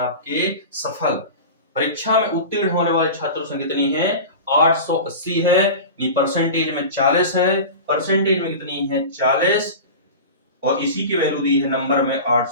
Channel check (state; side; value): inverted; both; correlation -0.31